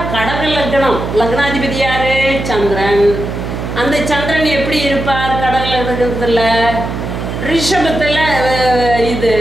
கடக லக்னம், லக்னாதிபதி யாரு? சந்திரன். அந்த சந்திரன் எப்படி இருப்பார் கடக லக்னத்தில்? ரிஷபத்தில் இது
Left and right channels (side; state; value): right; noise; hum, 5 dB below the sound